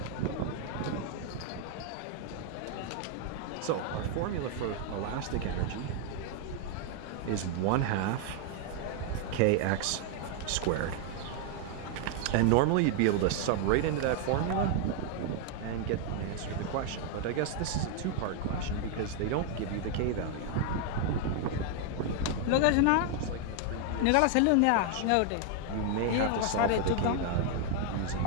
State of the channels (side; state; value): both; different; correlation 0.00